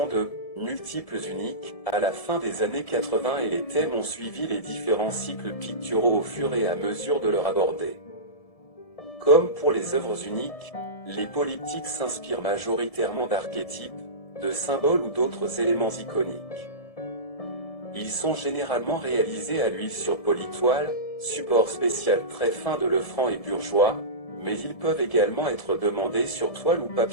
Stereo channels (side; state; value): right; late; 1.7 ms